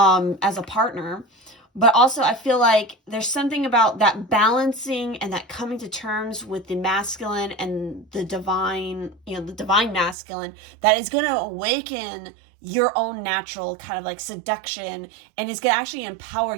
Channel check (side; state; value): left; drops out; at 10.2 s